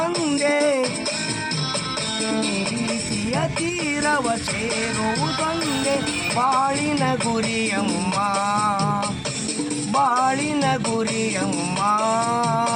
ಪ್ರೀತಿಯ ತೀರವ ಸೇರುವುದೊಂದೇ ಬಾಳಿನ ಗುರಿಯಮ್ಮ, ಬಾಳಿನ ಗುರಿಯಮ್ಮ.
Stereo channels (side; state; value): both; identical; correlation 1.00